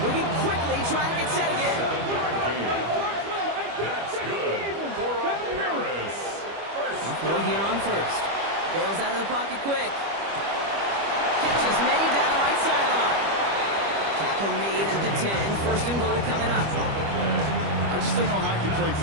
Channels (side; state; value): left; late; 25 ms